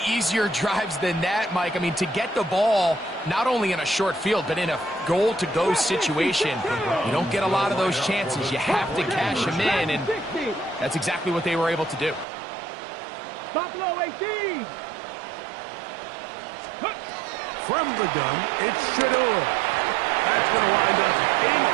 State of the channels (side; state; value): left; drops out; at 12.2 s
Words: easier drives than that, Mike. I mean, to get the ball, not only in a short field, but in a goal-to-go situation, you don't get a lot of those chances. You have to cash them in, and that's exactly what they were able to do. Buffalo 18. From the gun, it's Shador. That's going to wind up